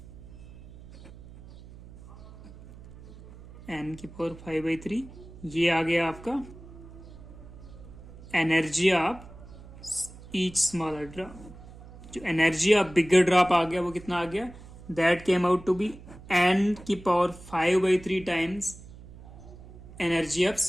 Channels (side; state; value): right; noise; hum, 18 dB below the sound